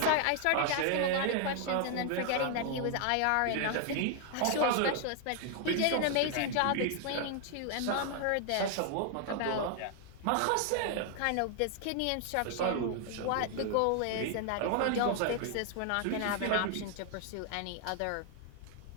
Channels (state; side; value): different; both; correlation 0.00